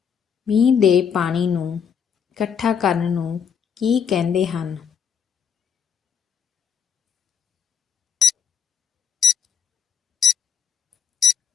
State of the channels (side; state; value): right; quieter; 7.4 dB